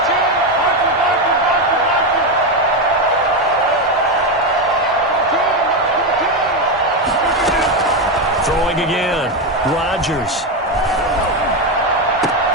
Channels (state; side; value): normal; both; correlation 0.10